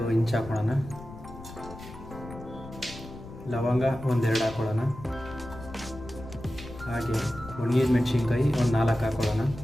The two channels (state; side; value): noise; left; rumble, 14 dB below the sound